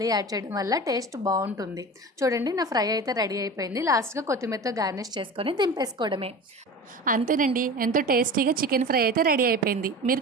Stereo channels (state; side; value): normal; both; correlation 0.33